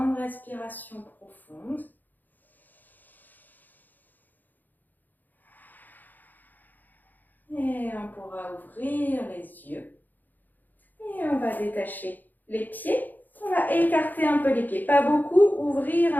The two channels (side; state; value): right; late; 0.085 ms